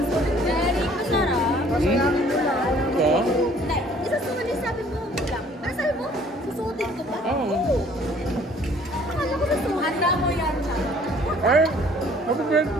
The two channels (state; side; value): normal; both; correlation 0.56